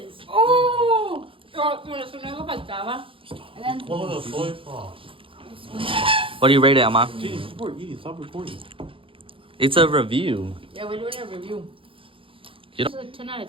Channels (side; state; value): left; late; 0.26 ms